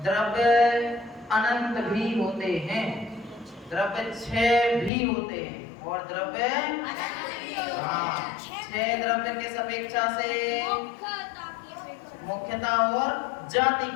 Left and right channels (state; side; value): drops out; right; at 4.9 s